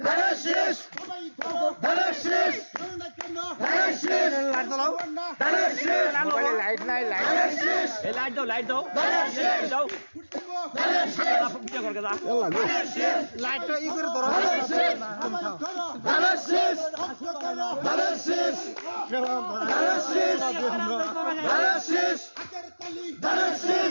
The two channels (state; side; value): inverted; both; correlation -1.00